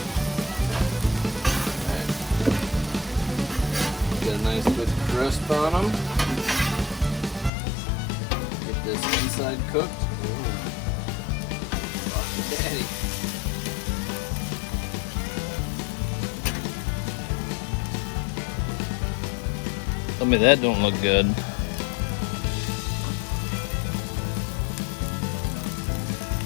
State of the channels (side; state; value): right; drops out; at 7.5 s